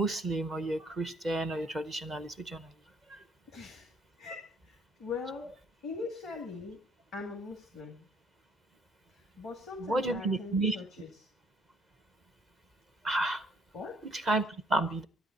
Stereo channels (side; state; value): both; normal; correlation 0.64